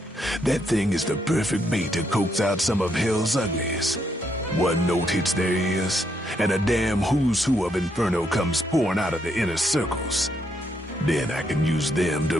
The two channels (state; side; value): normal; both; correlation 0.76